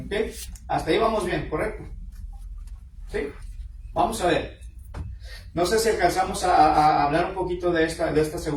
¿Ok? Hasta ahí vamos bien, ¿correcto? ¿Sí? Vamos a ver. No sé si alcanzamos a hablar un poquito de esta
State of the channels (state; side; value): identical; both; correlation 1.00